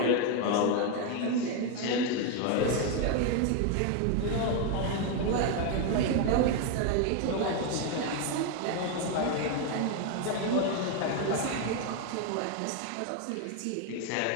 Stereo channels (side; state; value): both; different; correlation 0.01